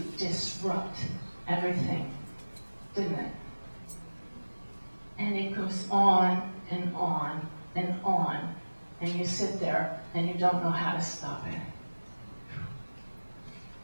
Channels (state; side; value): inverted; both; correlation -1.00